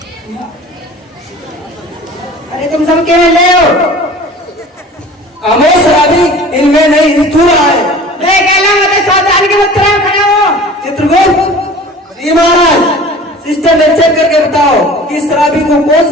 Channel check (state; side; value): normal; both; correlation 0.43